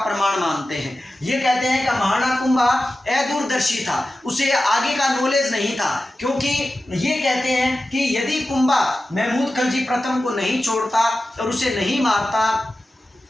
मानते हैं। ये कहते हैं कि महाराणा कुंभा अदूरदर्शी था, उसे आगे का नॉलेज नहीं था, क्योंकि ये कहते हैं कि यदि कुंभा महमूद खलजी प्रथम को नहीं छोड़ता और उसे नहीं मारता,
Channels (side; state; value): both; normal; correlation 0.94